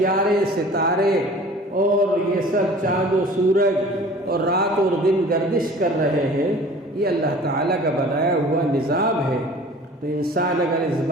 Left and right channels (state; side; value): normal; both; correlation 0.45